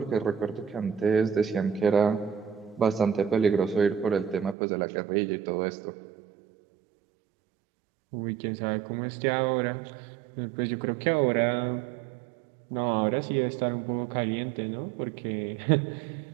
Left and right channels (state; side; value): drops out; left; at 4.5 s